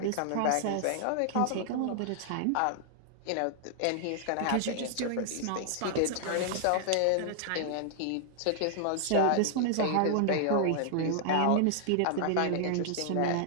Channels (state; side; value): different; both; correlation -0.01